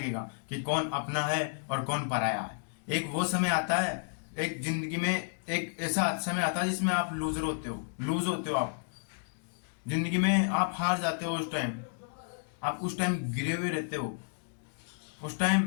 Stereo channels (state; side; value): silent; right; digital silence